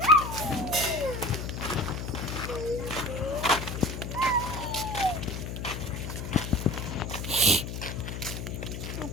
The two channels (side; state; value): left; noise; hum, 6 dB below the sound